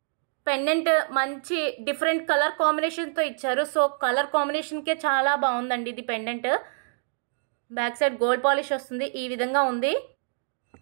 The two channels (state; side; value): silent; left; digital silence